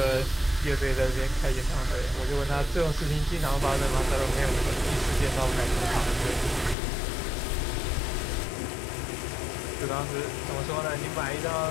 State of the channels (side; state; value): right; drops out; at 6.8 s